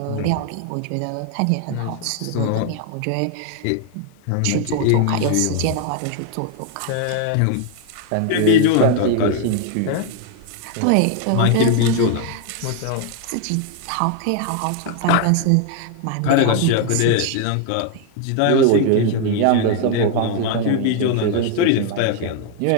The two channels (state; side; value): different; both; correlation 0.00